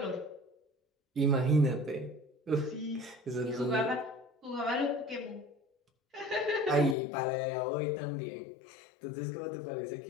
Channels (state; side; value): drops out; right; at 7.0 s